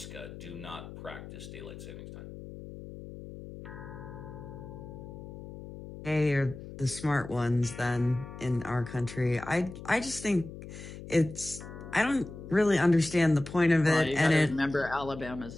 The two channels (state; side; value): noise; left; hum, 13 dB below the sound